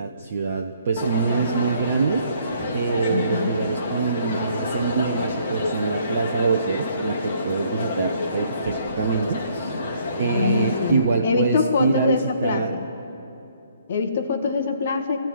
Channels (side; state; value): both; inverted; correlation -0.63